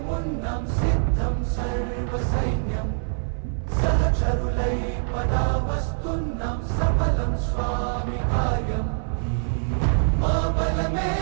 వస్తున్నాం సిద్ధం సర్వ సైన్యం సహచరులై పదా వస్తున్నాం సఫలం స్వామి కార్యం మా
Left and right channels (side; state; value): left; silent; 59 dB below the other